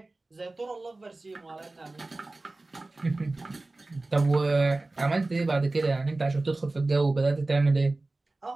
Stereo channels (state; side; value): quieter; left; 3.1 dB